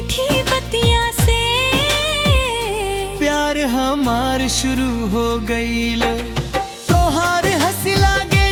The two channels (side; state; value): both; identical; correlation 1.00